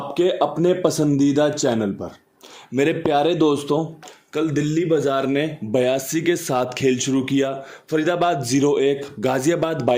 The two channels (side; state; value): both; identical; correlation 1.00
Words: अपने पसंदीदा चैनल पर। मेरे प्यारे दोस्तों, कल दिल्ली बाजार ने 82 के साथ खेल शुरू किया। फरीदाबाद 0-1, गाजियाबाद